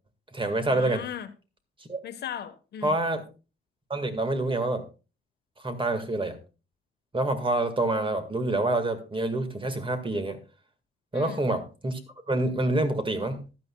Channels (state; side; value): normal; both; correlation 0.57